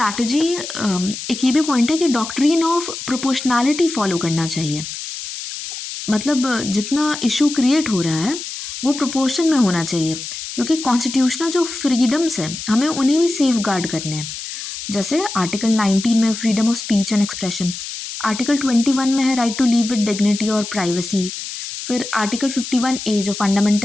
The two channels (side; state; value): left; noise; hiss, 8 dB below the sound